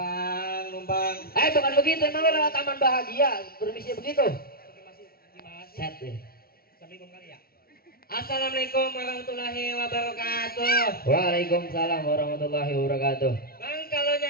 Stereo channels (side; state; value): right; late; 0.44 ms